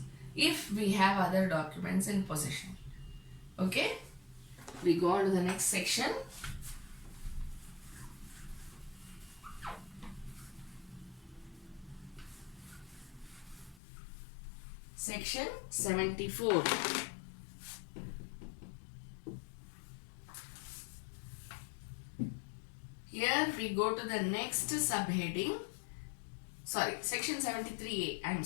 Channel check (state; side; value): drops out; right; at 13.8 s